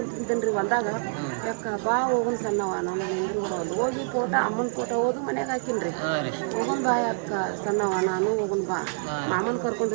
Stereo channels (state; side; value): silent; left; digital silence